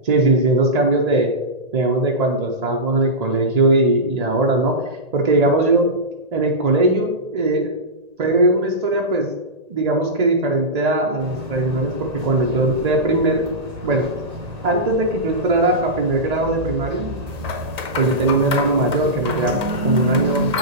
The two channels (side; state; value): left; late; 1.8 ms